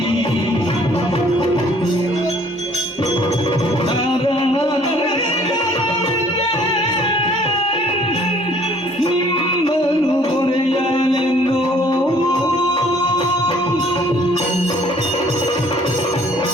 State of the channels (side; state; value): both; normal; correlation 0.58